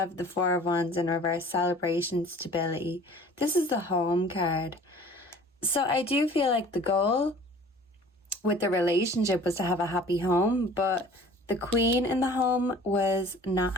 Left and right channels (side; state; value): both; normal; correlation 0.48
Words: the Four of Wands in reverse, celebration, stability. This is the home card. So I do feel like the goal with the relationship was to have a happy home, but the Queen in the home was not